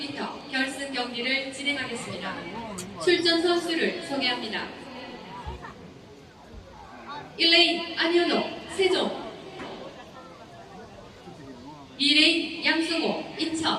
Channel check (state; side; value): identical; both; correlation 1.00